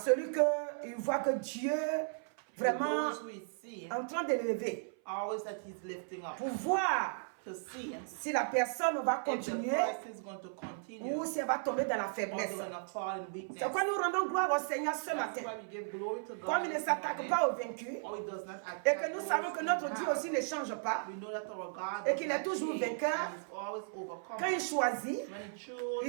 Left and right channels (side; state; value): left; silent; 54 dB below the other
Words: qu'il voit que Dieu vraiment en train de l'élever pour voir si la personne va continuer ou si elle va tomber dans la faiblesse. C'est pourquoi nous rendons gloire au Seigneur ce matin. Comme il ne s'attaque pas aux vaincus et que nous savons que notre Dieu aussi ne change pas et qu'il est toujours vainqueur, quand il choisit,